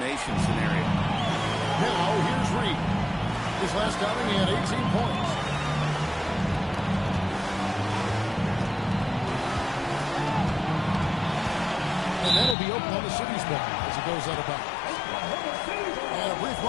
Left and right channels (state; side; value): drops out; right; at 12.6 s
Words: scenario. Now, here's Reed. His last outing, he had 18 points. And that'll be open on the city's ball as it goes out of bounds. And a brief